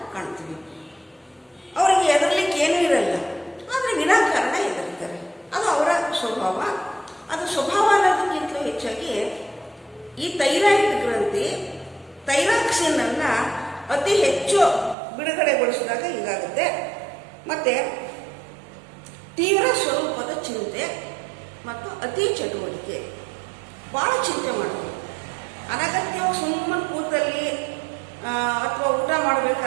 ಕಾಣ್ತೀವಿ. ಅವರಿಗೆ ಹೆದರ್ಲಿಕ್ಕೆ ಏನೂ ಇರಲ್ಲ, ಆದರೆ ವಿನಾಕಾರಣ ಹೆದರ್ತಾರೆ. ಅದು ಅವರ ಸ್ವಭಾವ. ಅದು ಸ್ವಭಾವ ಅನ್ನೋದಕ್ಕಿಂತಲೂ ಹೆಚ್ಚಾಗಿ ಈ ಥೈರಾಯ್ಡ್ ಗ್ರಂಥಿ ಥೈರಾಕ್ಸಿನ್ ಅನ್ನು ಅತಿ ಹೆಚ್ಚು ಬಿಡುಗಡೆಗೊಳಿಸಿದಾಗ ಹೀಗಾಗುತ್ತೆ. ಮತ್ತು ತೀವ್ರ ಸ್ವರೂಪದ ಚಿಂತೆ ಮತ್ತು ಅತಿ ಚಟುವಟಿಕೆ, ಭಾಳ ಚಿಂತೆ ಮಾಡೋದು, ಅನಗತ್ಯವಾಗಿ ಸುಮ್ಮನೆ ಕೂತಲ್ಲಿ ಅಥವಾ ಊಟ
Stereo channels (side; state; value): left; drops out; at 15.0 s